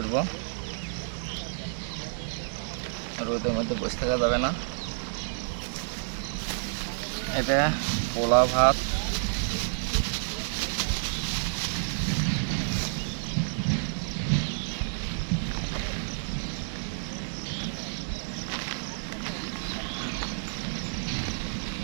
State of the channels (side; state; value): left; silent; digital silence